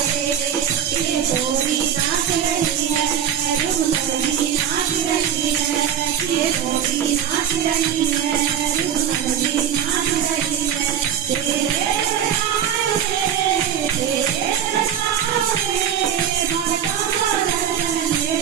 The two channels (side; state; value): left; quieter; 9.2 dB